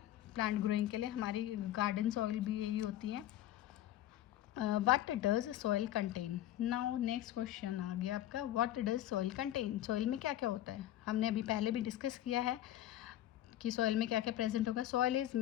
प्लांट ग्रोइंग के लिए. हमारी गार्डन सॉइल भी यही होती है. What does soil contain. Now next question आ गया आपका, what does soil contain. Soil में क्या क्या होता है, हमने अभी पहले भी डिस्कस किया है कि सॉइल में क्या क्या प्रेजेंट होगा. Soil is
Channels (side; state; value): right; quieter; 13.1 dB